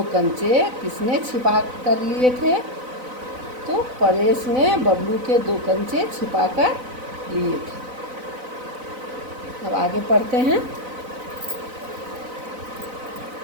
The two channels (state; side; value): late; left; 4.0 ms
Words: कंचे किसने छिपा कर लिए थे? तो परेश ने बबलू के 2 कंचे छिपा कर लिए थे। अब आगे पढ़ते हैं।